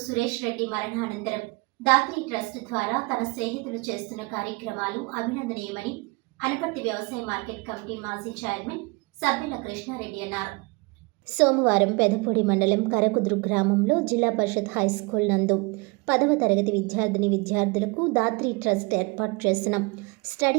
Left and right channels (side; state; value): left; quieter; 27.3 dB